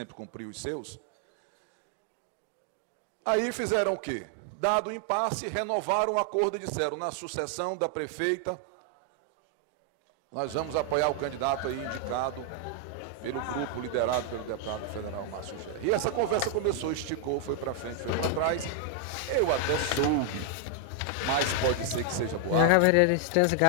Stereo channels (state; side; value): different; both; correlation 0.00